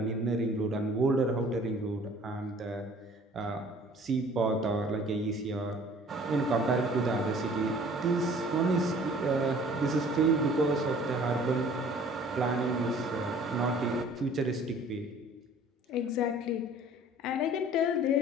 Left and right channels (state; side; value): normal; both; correlation 0.51